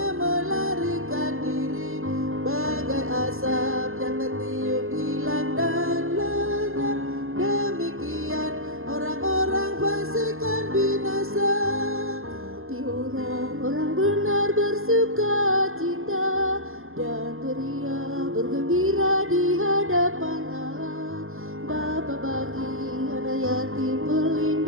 melarikan diri, bagai asap yang tertiup hilang dan lenyap. Demikian orang-orang fasik kan binasa, tapi orang-orang benar bersuka cita dan beria bergembira di hadapan Allah. Bapa bagi anak yatim,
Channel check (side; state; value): left; late; 0.60 ms